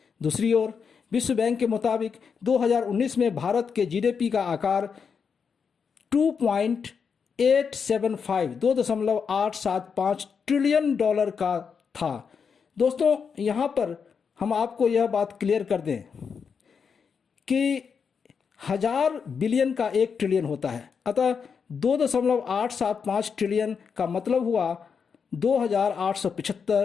दूसरी ओर विश्व बैंक के मुताबिक 2019 में भारत के जीडीपी का आकार 2.875 ट्रिलियन डॉलर का था। दोस्तों, यहाँ पर हम आपको यह बात क्लियर कर दें कि 1000 बिलियन का 1 ट्रिलियन होता है, अतः 2.875 ट्रिलियन का मतलब हुआ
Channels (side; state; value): right; quieter; 6.2 dB